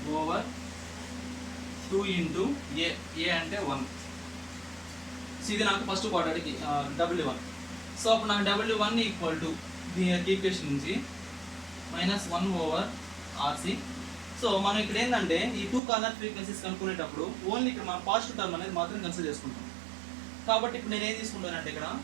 over 2 into A అంటే 1. సో ఇది నాకు ఫస్ట్ క్వాడ్రాటిక్ W1. సో అప్పుడు నాకు W1 ఈక్వల్ టు దీని ఈక్వేషన్ నుంచి మైనస్ 1 ఓవర్ ఆర్సి. సో మనం ఇక్కడ ఏంటంటే ఈ 2 కార్నర్ ఫ్రీక్వెన్సీస్ కనుక్కునేటప్పుడు ఓన్లీ ఇక్కడ మనం పాజిటివ్ టర్మ్ అనేది మాత్రం కన్సిడర్ చేసుకుంటాం. కాబట్టి ఇప్పుడు నేను ఏం తీసుకుంటానంటే ఇక్కడ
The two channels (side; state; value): left; drops out; at 15.8 s